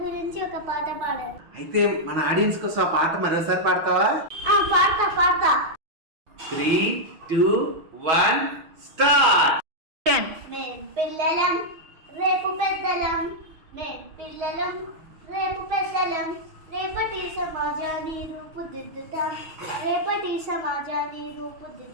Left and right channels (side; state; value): left; late; 6.3 ms